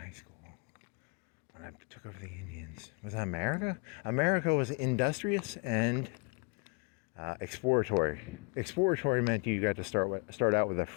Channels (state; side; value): quieter; right; 31.7 dB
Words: school, when I took over the Indians. Was that America? America was industrious and exploratory. Exploratory meant you got to start out with a